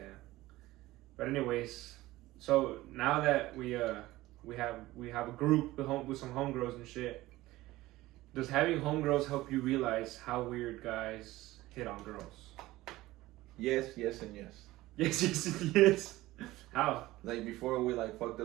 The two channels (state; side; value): quieter; left; 17.7 dB